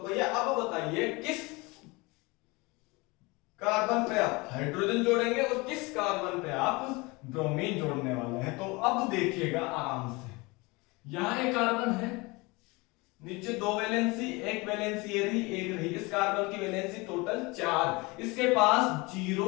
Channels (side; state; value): right; quieter; 25.1 dB